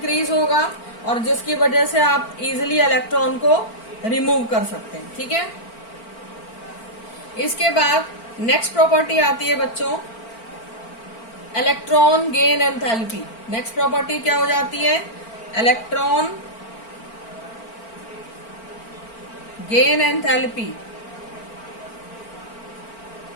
होगा और जिसकी वजह से आप इजिली इलेक्ट्रॉन को रिमूव कर सकते हैं। ठीक है, इसके बाद नेक्स्ट प्रॉपर्टी आती है बच्चों electron gain enthalpy. Next property क्या हो जाती है? Electron gain enthalpy.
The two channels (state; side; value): late; right; 4.4 ms